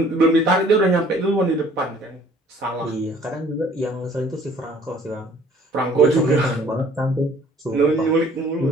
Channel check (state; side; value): normal; both; correlation 0.56